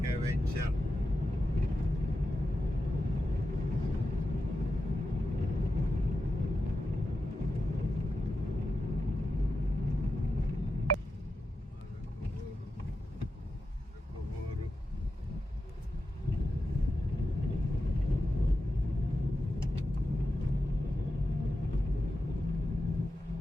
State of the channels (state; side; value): normal; both; correlation 0.90